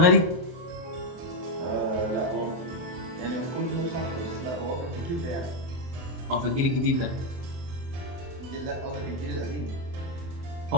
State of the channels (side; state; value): left; late; 24 ms